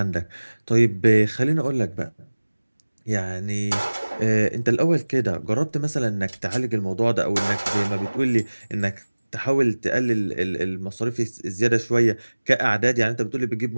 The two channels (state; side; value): inverted; both; correlation -1.00